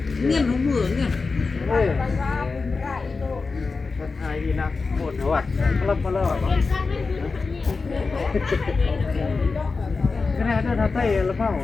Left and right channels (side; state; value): right; quieter; 4.3 dB